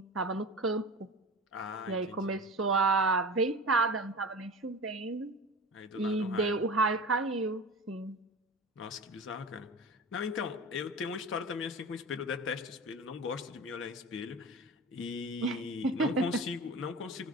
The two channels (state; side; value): normal; both; correlation 0.33